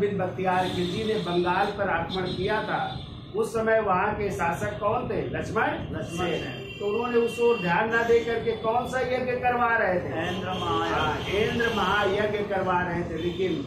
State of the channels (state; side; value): identical; both; correlation 1.00